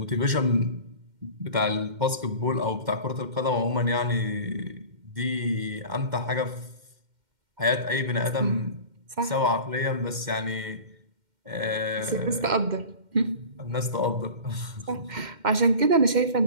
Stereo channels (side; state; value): left; late; 2.1 ms